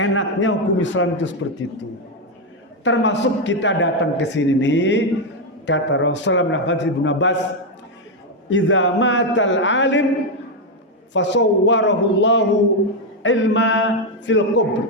hukum Islam itu seperti itu. Termasuk kita datang ke sini nih, kata Rasulullah bin Abbas, "Idza matal alim fasawwarahu Allahu ilma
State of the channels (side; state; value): both; normal; correlation 0.03